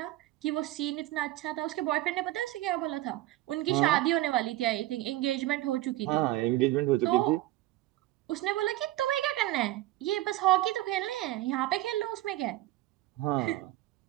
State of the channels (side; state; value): left; quieter; 16.3 dB